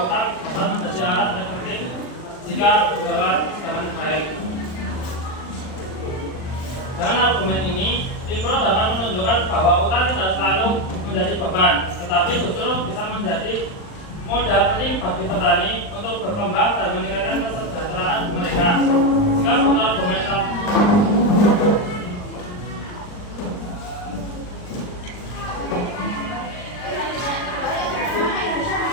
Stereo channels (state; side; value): late; right; 39 ms